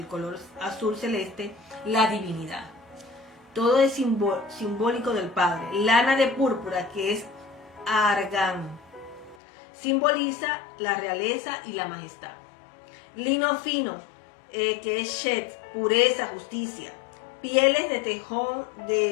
color azul celeste, la divinidad. Todo es simbólico del Padre. Lana de púrpura, que es argán, simboliza la realeza y la majestad. Lino fino, que es shet, pureza, justicia. Pieles de tejón,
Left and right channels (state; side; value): drops out; right; at 9.3 s